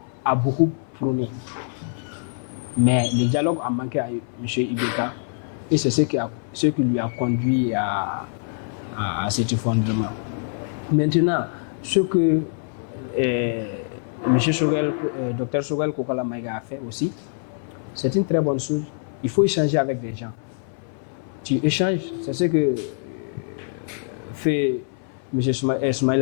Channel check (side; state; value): right; silent; 59 dB below the other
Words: a beaucoup prôné. Mais le dialogue a manqué à M. Ibeka et c'est ce qui lui a conduit à cet effondrement. Maintenant, ce que M. Choguel, Dr Choguel Kokala Maïga a fait aussi, c'est une très bonne chose. Il faut échanger avec des gens. Tu échanges, c'est ce que fait M.